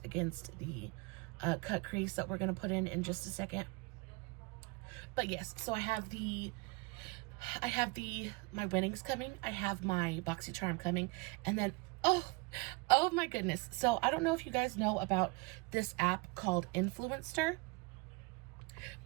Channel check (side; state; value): left; quieter; 27.0 dB